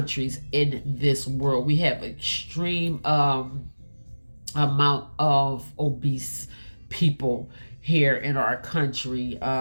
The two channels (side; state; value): both; inverted; correlation -1.00